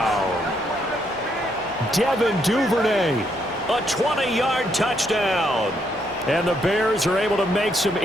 Devin Duvernay. A 20-yard touchdown. And the Bears are able to make some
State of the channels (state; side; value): normal; both; correlation 0.74